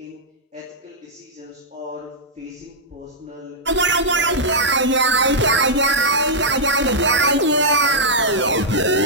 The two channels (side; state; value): both; normal; correlation -0.08